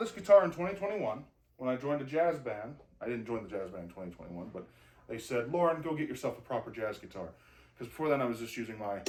guitar in 2021 when I joined a jazz band. I didn't join the jazz band in 2021, but they said, Lauren, go get yourself a proper jazz guitar. Because before then I was just using my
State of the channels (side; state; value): both; identical; correlation 1.00